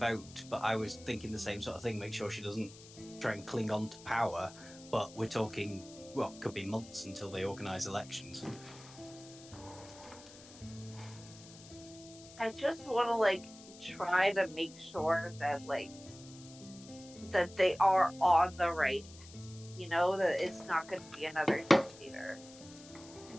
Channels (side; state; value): left; noise; hiss, 19 dB below the sound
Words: but I was thinking the same sort of thing. Make sure she doesn't try and cling on to power. But we're talking, well, could be months until they organise elections. I just want to like try to make sure that that they are on the right, that it's not going to be another dictator.